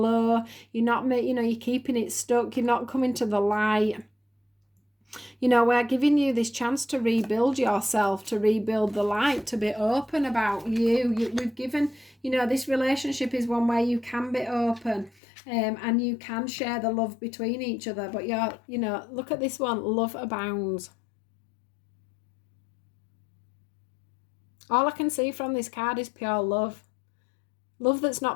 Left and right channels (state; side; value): drops out; right; at 15.1 s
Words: You're not, you're keeping it stuck. You're not coming to the light. You know, we're giving you this chance to rebuild yourself, to rebuild the light, to be open about you. We've given, you know, this relationship is one where you can be open, and you can share the love between each other. But you know, look at this one, love abounds. All I can see from this card is pure love. Love that's